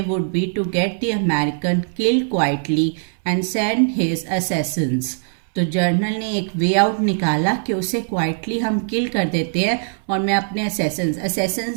would be to get the American killed quietly and send his assassins. तो जर्नल ने एक वे आउट निकाला कि उसे क्वाइटली हम किल कर देते हैं और मैं अपने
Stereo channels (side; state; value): left; silent; 65 dB below the other